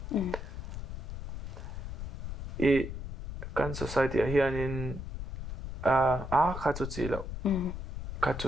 kan society hianin kha chu chi lo kha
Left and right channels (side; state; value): left; noise; rumble, 7 dB below the sound